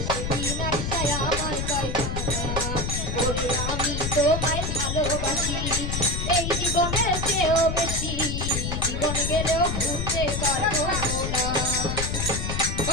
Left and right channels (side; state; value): left; noise; rumble, 2 dB below the sound